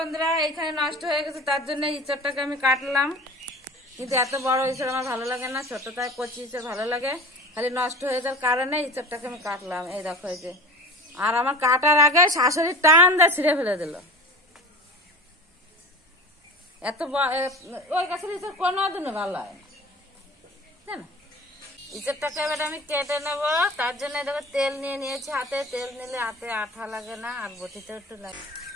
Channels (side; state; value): both; normal; correlation 0.38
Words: এইখানে নষ্ট হয়ে গেছে, তার জন্য ইঁচড়টাকে আমি কাটলাম। কিন্তু এত বড় ইঁচড় আমার ভালো লাগে না, ছোটটায় কচি ইঁচড় ভালো লাগে। খালি নষ্ট হয়ে যাওয়ার কারণে ইঁচড়টাকে আমি কাটলাম। এই দেখো এই যে, আর আমার কাটার আগে শাশুড়ি টান দিয়ে ছিঁড়ে ফেলে দিল। এত ওই গাছের ইঁচড় কোনো দিনও ভালো হয় না। ইঁচড়টাকে এবার আমি কেটে নেবো, তার জন্য দেখো তেল নিয়ে নিয়েছি হাতে। তেল নিলে হাতে আঠা লাগে না, আর বটিতেও একটু লাগে।